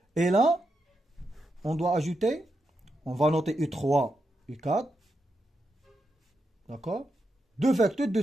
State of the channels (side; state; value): both; normal; correlation 0.85